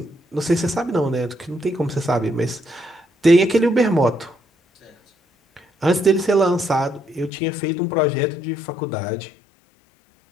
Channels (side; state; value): right; drops out; at 7.3 s